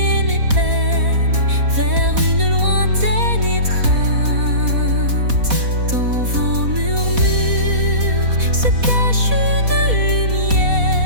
mes peines vers une lointaine étreinte. Dans vos murmures se cache une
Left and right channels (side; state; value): left; late; 4.1 ms